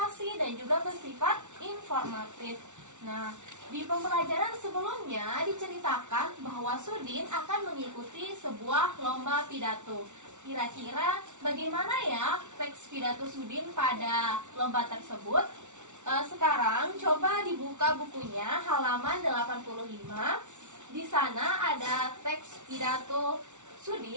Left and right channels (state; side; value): late; left; 0.84 ms